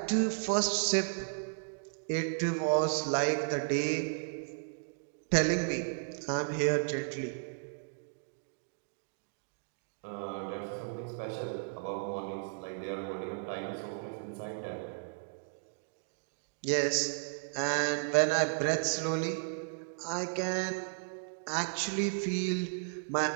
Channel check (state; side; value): silent; left; digital silence